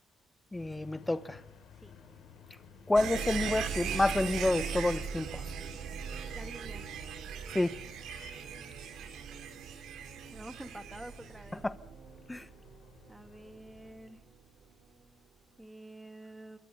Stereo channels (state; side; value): normal; both; correlation 0.90